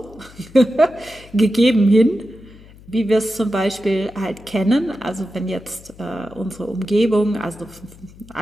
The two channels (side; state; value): left; noise; hum, 22 dB below the sound